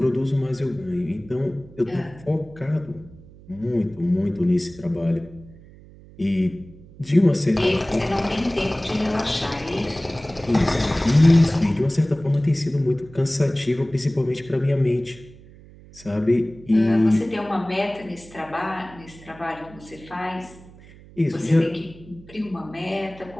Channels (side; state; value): right; noise; hum, 21 dB below the sound